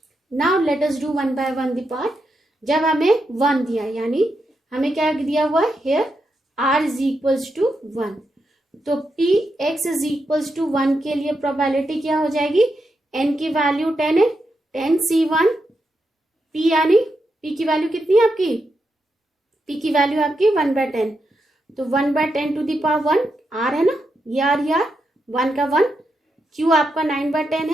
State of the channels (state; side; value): normal; both; correlation 0.85